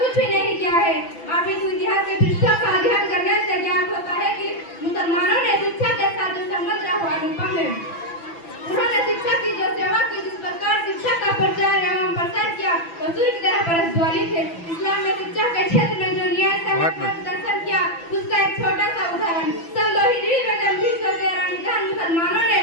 भी नहीं किया है। आप इस इतिहास के पृष्ठों का अध्ययन करने से ज्ञात होता है कि मुसलमानों ने शिक्षा के साथ जो संबंध रखा अनुपम है। उन्होंने शिक्षा की जो सेवा की, जिस प्रकार शिक्षा का प्रचार एवं प्रसार किया, वो सूर्य की तरह प्रज्वलित है। इस्लाम ने शिक्षा के क्षेत्र में जो न्याय प्रदर्शन किया, उसका एक छोटा सा उदाहरण सन 2 हिजरी में जब 313 मुसलमानों ने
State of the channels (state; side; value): late; right; 6.0 ms